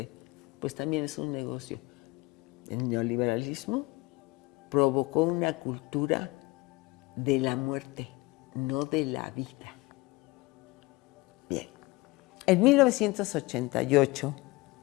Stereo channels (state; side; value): quieter; right; 22.3 dB